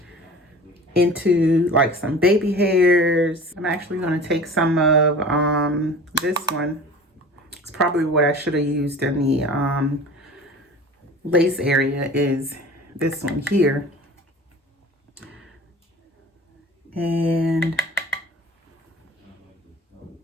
into like some baby hairs. I'm actually going to take some of this one. It's probably what I should have used in the lace area, is this one here. And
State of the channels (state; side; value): normal; both; correlation 0.40